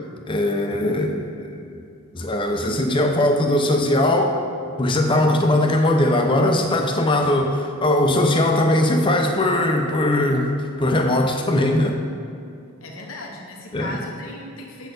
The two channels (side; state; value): both; normal; correlation 0.49